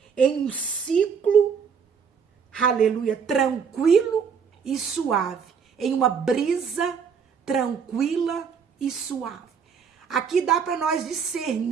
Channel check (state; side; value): quieter; left; 6.5 dB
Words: em um ciclo, aleluia, tranquilo e suave, em uma brisa tranquila e suave. Aqui dá para nós